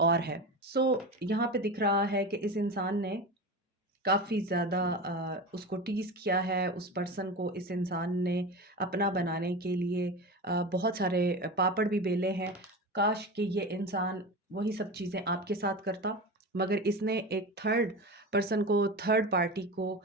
है। यहाँ पे दिख रहा है कि इस इंसान ने काफ़ी ज़्यादा उसको टीज़ किया है, उस पर्सन को इस इंसान ने अपना बनाने के लिए बहुत सारे पापड़ भी बेले हैं। काश कि ये इंसान वही सब चीज़ें आपके साथ करता, मगर इसने एक थर्ड पर्सन को, थर्ड पार्टी को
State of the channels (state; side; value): normal; both; correlation 0.26